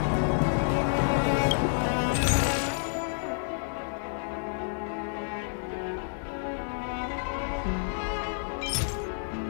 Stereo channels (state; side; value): silent; right; digital silence